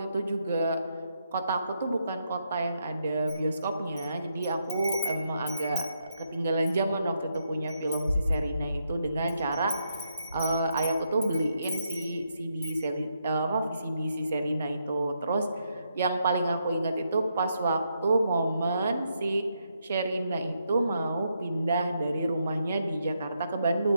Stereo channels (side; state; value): both; inverted; correlation -0.80